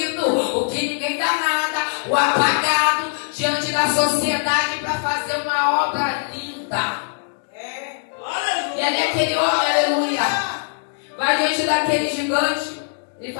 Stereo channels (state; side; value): silent; right; digital silence